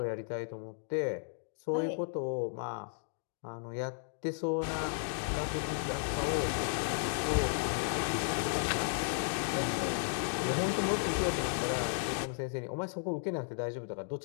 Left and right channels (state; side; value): silent; right; digital silence